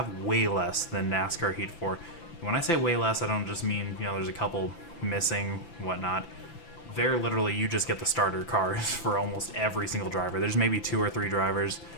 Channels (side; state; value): right; late; 5.9 ms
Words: way less than NASCAR Heat 4. When I say way less, I don't just mean, there's a couple missing, whatnot. They're literally, you just get the starter cars for almost every single driver. There's maybe 2 or 3 drivers